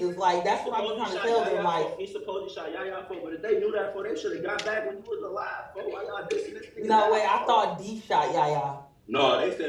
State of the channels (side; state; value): both; identical; correlation 1.00